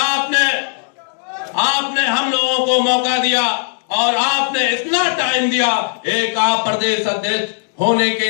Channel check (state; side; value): silent; right; digital silence